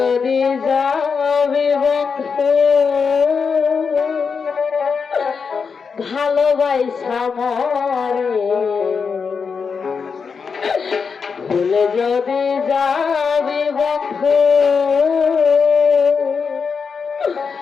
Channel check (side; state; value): right; quieter; 5.6 dB